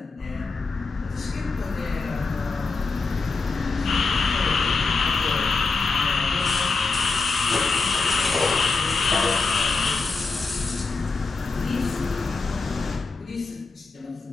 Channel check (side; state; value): right; quieter; 4.1 dB